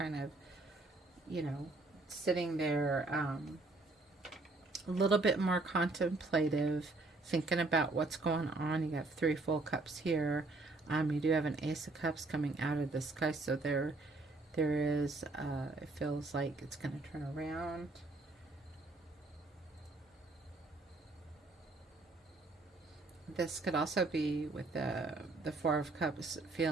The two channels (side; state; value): left; quieter; 3.3 dB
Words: of, you know, sitting there a little bit more contemplative, thinking about what's going on. You got 3 full cups here. You do have an Ace of Cups coming out of the sky, so there is, it feels like it's going to turn around. This could also be with the 4 of Cups,